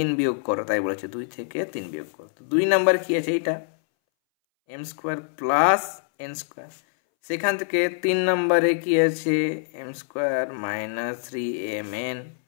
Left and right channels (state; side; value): silent; right; 62 dB below the other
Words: বিয়োগ করো, তাই বলেছে 2 থেকে 3 বিয়োগ করো। 2 নম্বর কি আছে, এটা M square plus N square, সেখান থেকে 3 নম্বরে কি আছে, M square minus 3mn